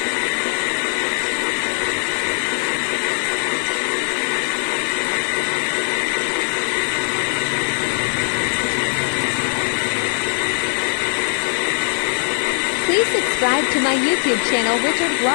Please subscribe to my YouTube channel, Richard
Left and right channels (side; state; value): right; silent; 57 dB below the other